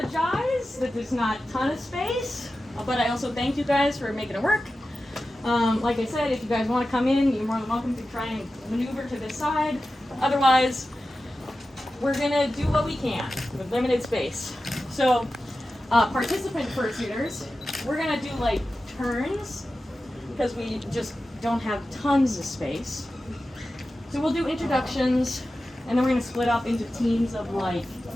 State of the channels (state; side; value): normal; both; correlation 0.93